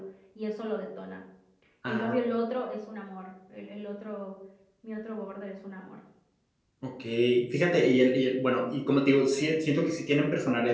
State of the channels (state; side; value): identical; both; correlation 1.00